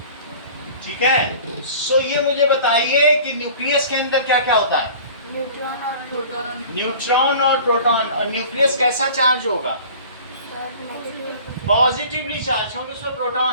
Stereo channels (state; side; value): inverted; both; correlation -0.44